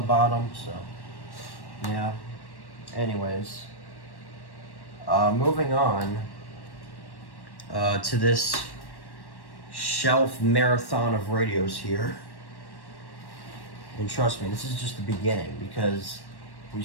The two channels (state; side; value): late; right; 1.1 ms